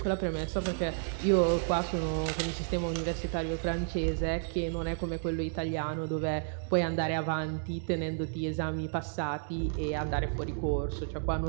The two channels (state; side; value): silent; left; digital silence